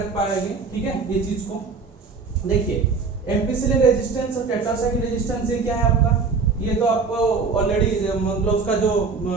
पाएंगे, ठीक है। ये चीज को देखिए, एम्पिसिलिन रेजिस्टेंस और टेट्रासाइक्लिन रेजिस्टेंस ये क्या है आपका, ये तो आपको ऑलरेडी मतलब उसका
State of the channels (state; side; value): quieter; left; 4.7 dB